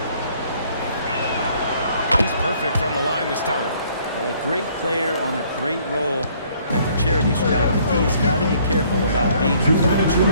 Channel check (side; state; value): both; inverted; correlation -0.62